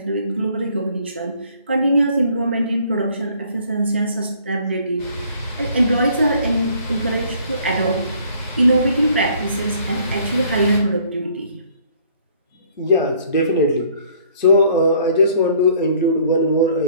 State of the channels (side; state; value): both; inverted; correlation -0.59